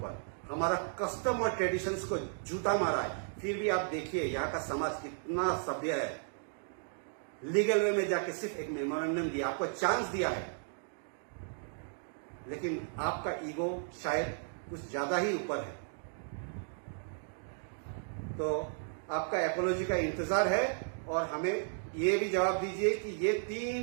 हमारा कस्टम और ट्रेडिशंस को जूता मारा है। फिर भी आप देखिए यहाँ का समाज कितना सभ्य है। लीगल वे में जाके सिर्फ एक मेमोरेंडम दिया, आपको चांस दिया है, लेकिन आपका ईगो शायद कुछ ज्यादा ही ऊपर है। तो आपका एपोलॉजी का इंतजार है। और हमें ये भी जवाब दीजिए कि ये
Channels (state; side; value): silent; left; digital silence